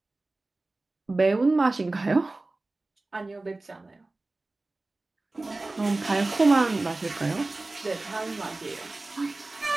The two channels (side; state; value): left; quieter; 3.1 dB